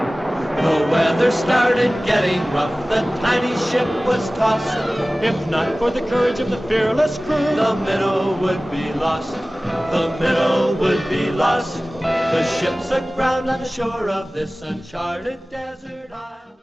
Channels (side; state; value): both; normal; correlation 0.97